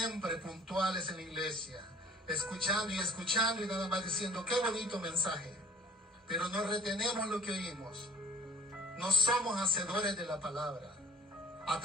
puntuales en la iglesia, escuchando y nada más diciendo qué bonito mensaje, pero no retenemos lo que oímos? No somos hacedores de la palabra.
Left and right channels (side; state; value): both; normal; correlation 0.52